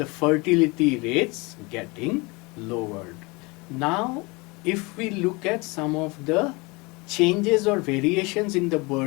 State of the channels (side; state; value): right; quieter; 26.4 dB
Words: fertility rates getting lowered. Now, if we look at some of the changes or variations in the